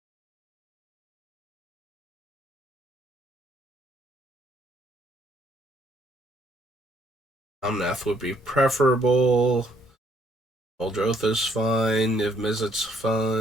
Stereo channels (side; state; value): both; normal; correlation 0.68